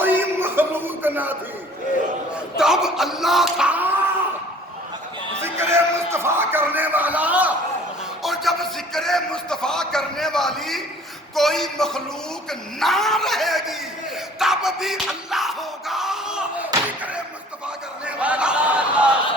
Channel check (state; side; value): normal; both; correlation 0.52